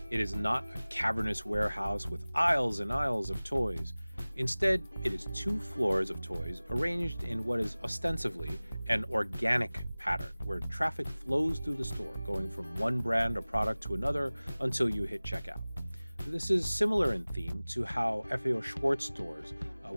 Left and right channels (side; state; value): both; inverted; correlation -0.99